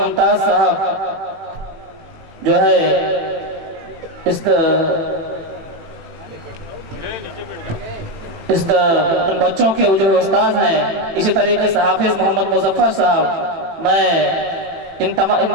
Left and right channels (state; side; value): late; left; 18 ms